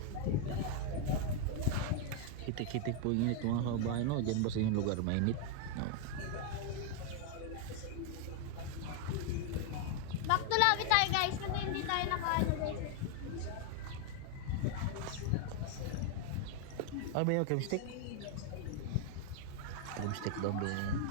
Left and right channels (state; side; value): different; both; correlation 0.00